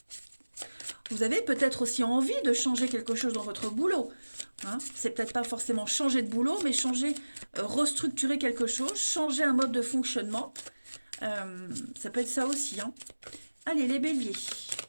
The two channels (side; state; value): both; inverted; correlation -1.00